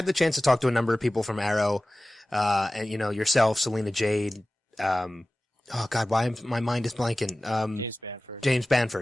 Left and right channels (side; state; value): both; normal; correlation 0.96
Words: the chance to talk to a number of people from Arrow, and yourself, Selena Jade, oh God, my mind is blanking? James